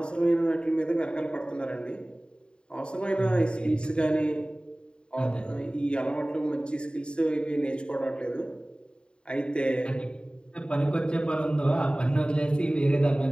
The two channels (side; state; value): right; late; 0.051 ms